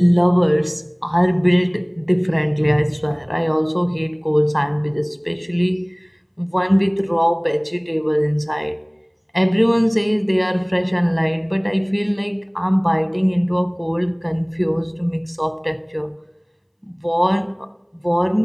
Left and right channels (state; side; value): identical; both; correlation 1.00